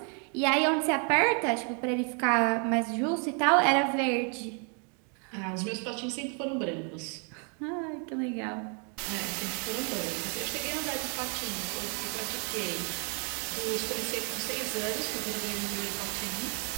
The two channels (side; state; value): left; quieter; 39.1 dB